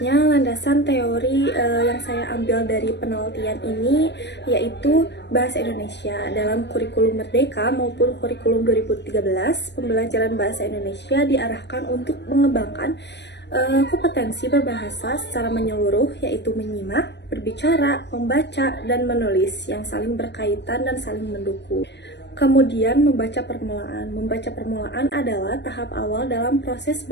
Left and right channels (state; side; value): late; right; 0.50 ms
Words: landasan teori yang saya ambil dari penelitian ini yaitu Bahasa Indonesia. Dalam kurikulum Merdeka maupun kurikulum 2013, pembelajaran Bahasa Indonesia diarahkan untuk mengembangkan kompetensi berbahasa secara menyeluruh, yaitu menyimak, berbicara, membaca, dan menulis yang saling berkaitan dan saling mendukung. Kemudian, membaca permulaan. Membaca permulaan adalah tahap awal dalam proses